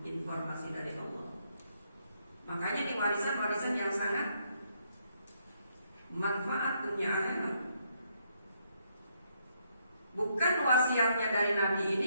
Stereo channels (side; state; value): both; inverted; correlation -0.74